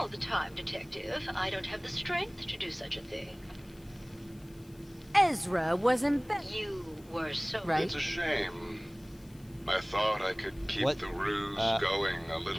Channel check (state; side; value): noise; left; hiss, 27 dB below the sound